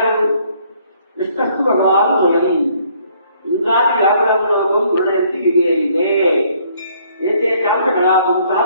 విష్ణు భగవాన్ స్వయం ఇంకా వ్యాపరంలోకం గుణయంతి వివేయిదే ఏతే కాంత కళాపుంస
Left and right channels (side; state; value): both; inverted; correlation -0.64